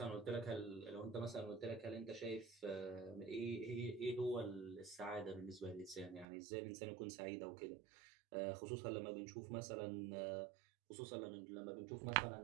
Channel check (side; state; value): left; drops out; at 6.2 s